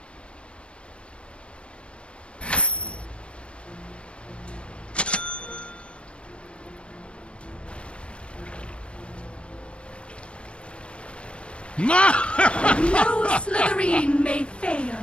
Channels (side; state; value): right; late; 0.058 ms